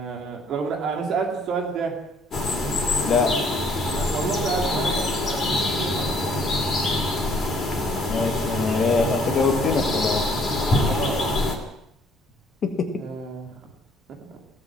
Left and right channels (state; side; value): normal; both; correlation 0.61